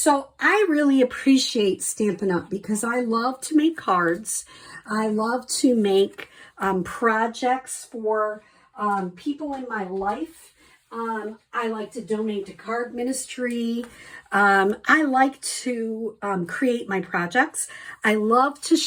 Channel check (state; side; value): identical; both; correlation 1.00